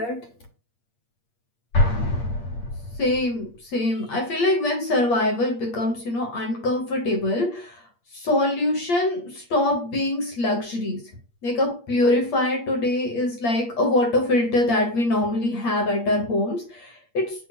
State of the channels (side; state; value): right; late; 8.6 ms